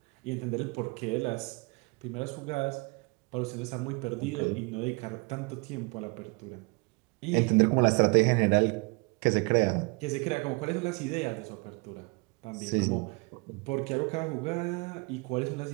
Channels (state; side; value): quieter; left; 28.9 dB